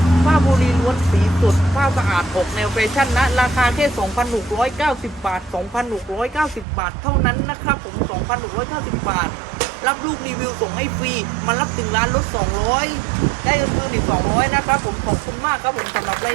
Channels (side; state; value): left; drops out; at 6.7 s